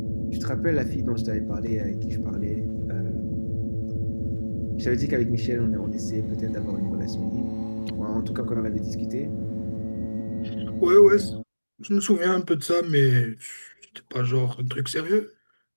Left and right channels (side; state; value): both; inverted; correlation -1.00